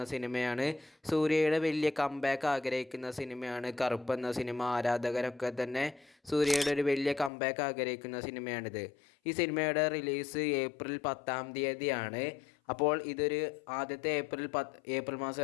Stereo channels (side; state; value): right; drops out; at 7.3 s